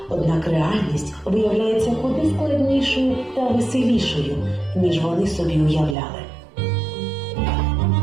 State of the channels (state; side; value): drops out; left; at 6.0 s